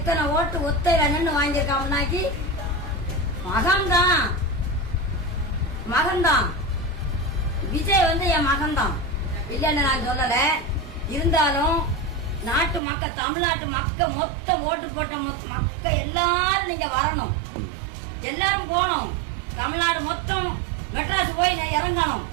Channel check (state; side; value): drops out; left; at 12.8 s